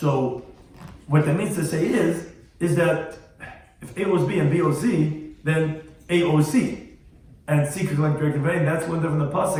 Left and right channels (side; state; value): both; identical; correlation 1.00